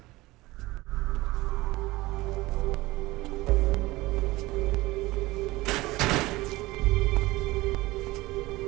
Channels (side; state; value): left; quieter; 19.8 dB